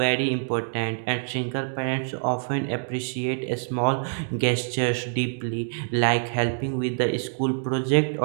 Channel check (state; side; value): silent; left; digital silence